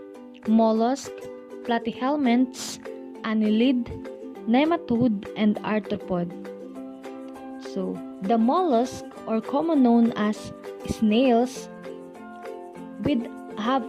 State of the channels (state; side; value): identical; both; correlation 1.00